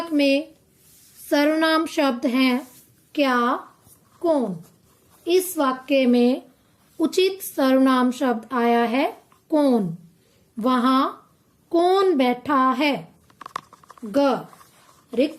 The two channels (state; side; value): identical; both; correlation 1.00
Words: में सर्वनाम शब्द हैं क्या, कौन। इस वाक्य में उचित सर्वनाम शब्द आया है कौन। वहाँ कौन बैठा है। ग,